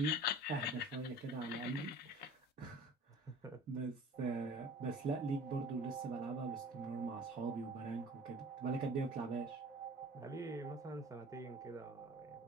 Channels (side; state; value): both; normal; correlation 0.44